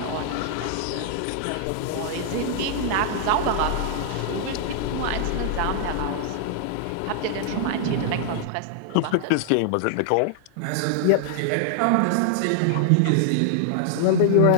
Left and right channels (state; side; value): different; both; correlation 0.00